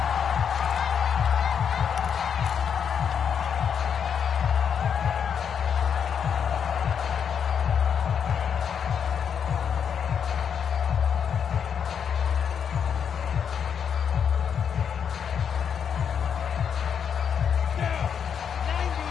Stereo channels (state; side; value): quieter; right; 7.5 dB